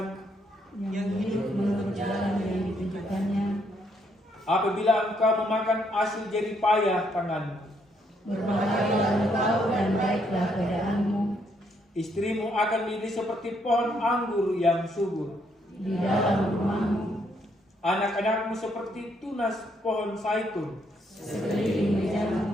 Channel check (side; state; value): both; normal; correlation 0.73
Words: yang hidup menurut jalan yang ditunjukkannya. Apabila engkau memakan hasil jerih payah tanganmu, Berbahagialah engkau dan baiklah keadaanmu. istrimu akan menjadi seperti pohon anggur yang subur. Di dalam rumahmu, Anak-anakmu seperti tunas pohon zaitun. sekeliling